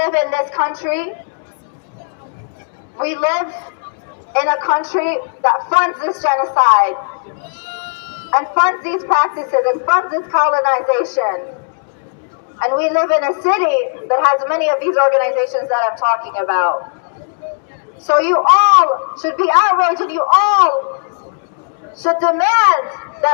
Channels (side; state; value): right; silent; digital silence